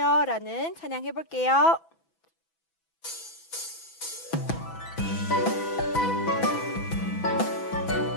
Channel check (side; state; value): right; late; 6.0 ms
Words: 라는 찬양 해볼게요.